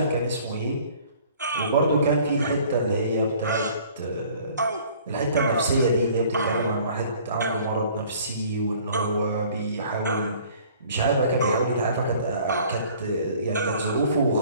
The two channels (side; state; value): both; inverted; correlation -0.53